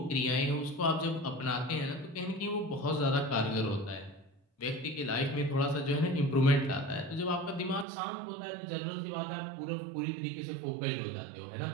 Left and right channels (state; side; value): drops out; left; at 7.9 s